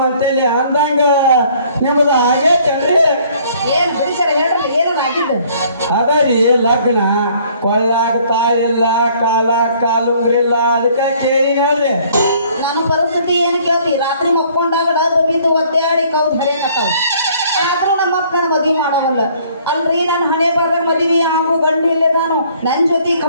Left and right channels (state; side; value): inverted; both; correlation -0.59